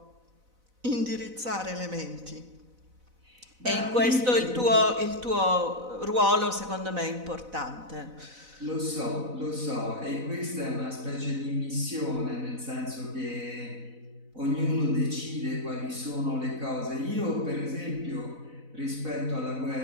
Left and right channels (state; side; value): late; left; 4.0 ms